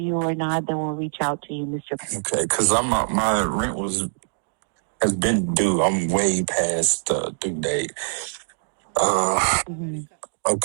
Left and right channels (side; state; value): left; silent; digital silence